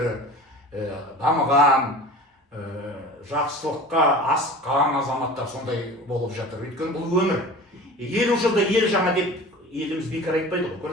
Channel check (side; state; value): both; normal; correlation 0.38